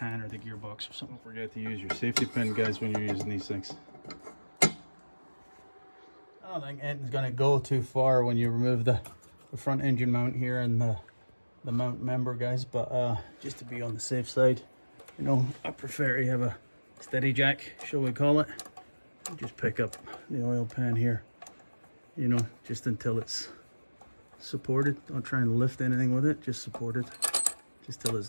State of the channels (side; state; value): both; inverted; correlation -1.00